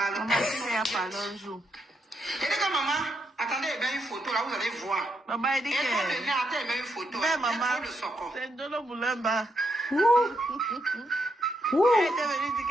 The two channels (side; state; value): both; normal; correlation 0.80